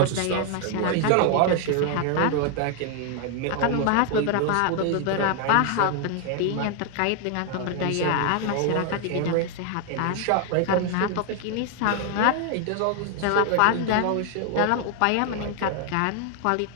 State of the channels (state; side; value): different; both; correlation 0.00